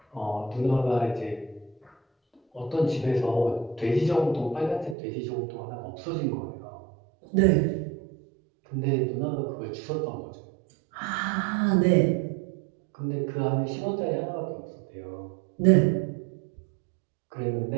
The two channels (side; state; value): left; drops out; at 5.0 s